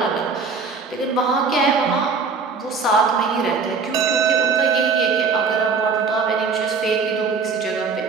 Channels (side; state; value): left; quieter; 5.0 dB